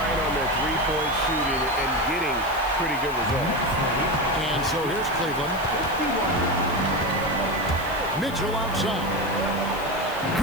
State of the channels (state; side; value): noise; left; hiss, 18 dB below the sound